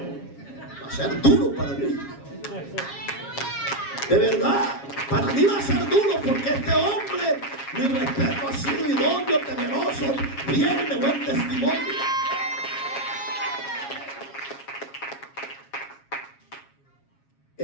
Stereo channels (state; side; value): late; right; 7.3 ms